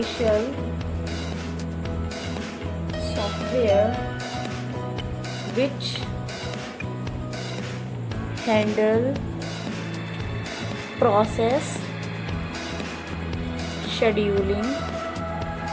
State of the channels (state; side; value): identical; both; correlation 1.00